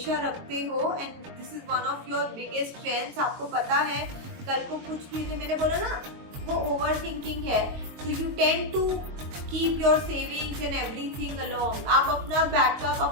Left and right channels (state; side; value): late; left; 22 ms